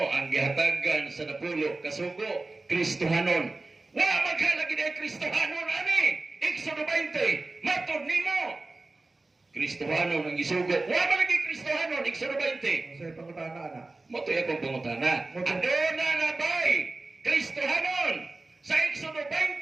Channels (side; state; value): left; quieter; 3.2 dB